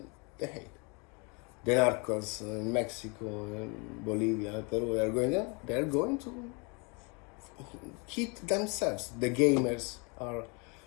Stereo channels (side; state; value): right; quieter; 31.4 dB